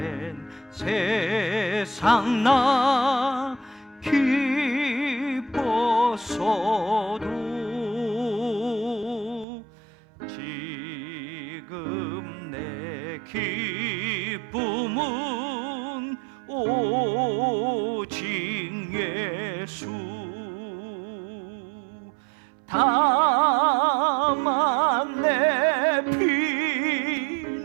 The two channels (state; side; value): drops out; left; at 9.5 s